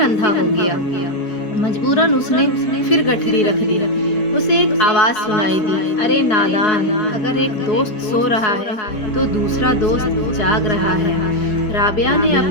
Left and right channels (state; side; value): late; right; 4.6 ms